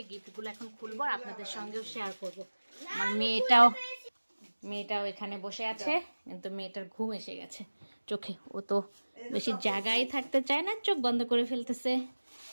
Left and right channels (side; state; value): both; inverted; correlation -1.00